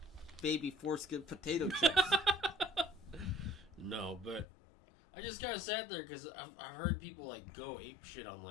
baby foreskin potato chips. No, but I just kind of sat there because I've heard people like go ape shit on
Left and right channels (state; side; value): drops out; right; at 4.5 s